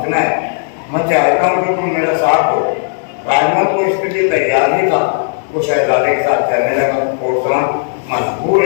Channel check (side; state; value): right; silent; digital silence